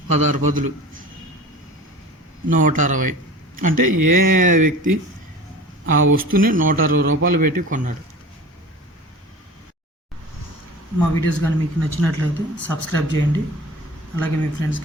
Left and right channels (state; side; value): normal; both; correlation 0.38